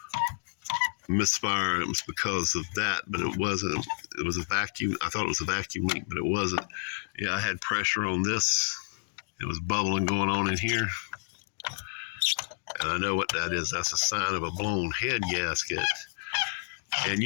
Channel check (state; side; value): silent; right; digital silence